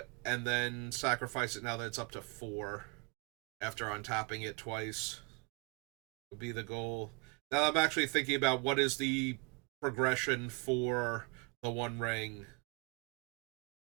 and then sacrifice it now that it's up to 4 after untapping it twice would be the goal. Now I'm actually thinking about what is the progression for the One Ring.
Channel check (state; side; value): quieter; left; 31.2 dB